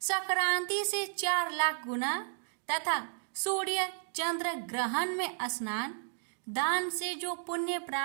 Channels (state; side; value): silent; left; digital silence